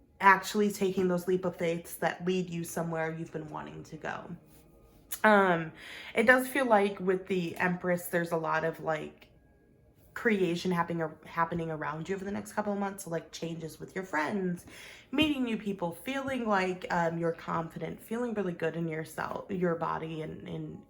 actually taking those leap of faiths that lead you somewhere you've been wanting to go. It does feel like with the Empress, there's a lot of like creation happening around you over the next couple of months. So like changes with your friends, meeting new people, feeling like you're confident, feeling really good in yourself, your body, and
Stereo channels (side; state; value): both; identical; correlation 1.00